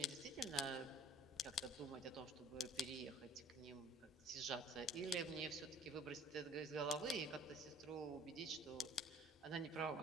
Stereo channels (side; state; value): both; normal; correlation 0.54